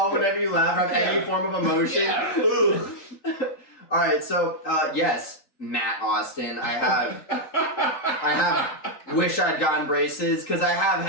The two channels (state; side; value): late; right; 3.8 ms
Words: whenever you laugh or have any form of emotion. Yeah. All right, so yes, Matt Austin, I have wish I'd gotten braces because I have